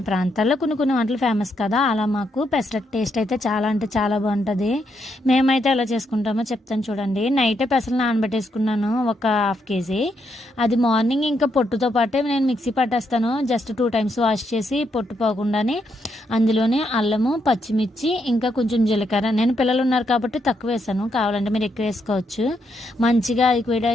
ప్రాంతాల్లో కొన్ని వంటలు ఫేమస్ కదా, అలా మాకు పెసరట్టు టేస్ట్ అయితే చాలా అంటే చాలా బాగుంటుంది. మేమైతే ఎలా చేసుకుంటామో చెప్తాను చూడండి. నైటే పెసలు నానబెట్టేసుకున్నాను, ఒక హాఫ్ కేజీ. అది మార్నింగ్ ఇంకా పొట్టుతో పాటే నేను మిక్సీ పట్టేస్తాను. జస్ట్ 2 టైమ్స్ వాష్ చేసి పొట్టు పోకుండానే అందులోనే అల్లము, పచ్చిమిర్చి, ఇంకా కొంచెం జీలకర్ర. నేను పిల్లలు ఉన్నారు కాబట్టి తక్కువ వేసాను, కావాలంటే మీరు ఎక్కువ వేసుకోవచ్చు. మంచిగా అది కూడా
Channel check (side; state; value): both; normal; correlation 0.78